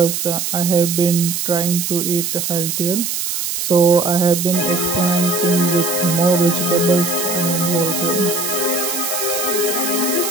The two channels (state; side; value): noise; right; hiss, 2 dB below the sound